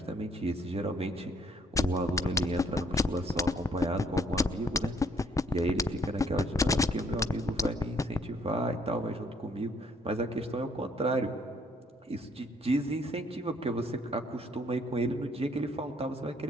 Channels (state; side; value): normal; both; correlation 0.66